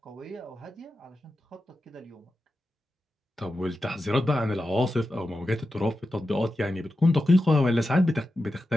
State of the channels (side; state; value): both; normal; correlation 0.91